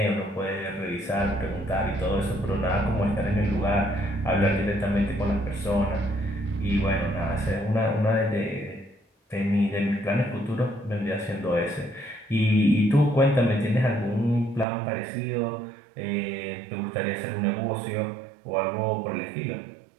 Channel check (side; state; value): left; drops out; at 14.7 s